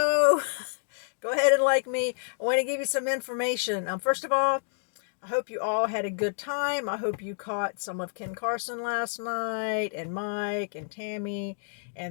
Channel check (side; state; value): right; silent; digital silence